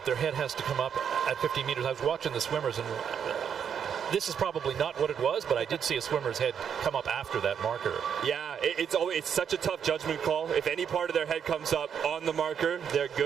their head has to come up at 50 meters, I was watching the swimmers, and this is probably not what it was, but I did see a swimmer's head come up after that marker. Yeah, it's such a tough judgment call. If any part of their head comes up on the marker, they're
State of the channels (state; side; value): quieter; left; 7.8 dB